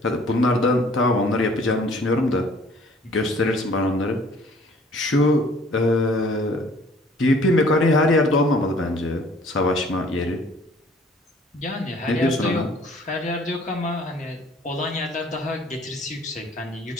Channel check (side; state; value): both; normal; correlation 0.55